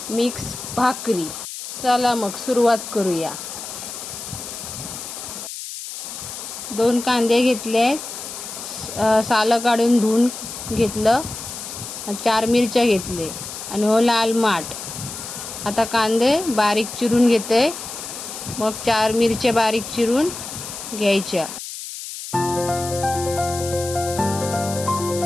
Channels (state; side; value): noise; left; hiss, 9 dB below the sound